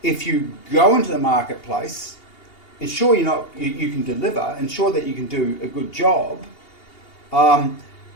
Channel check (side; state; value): right; late; 2.8 ms